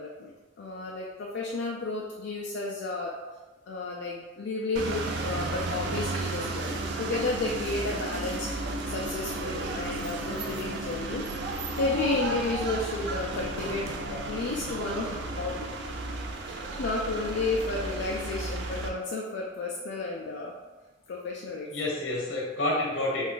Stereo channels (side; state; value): both; normal; correlation 0.21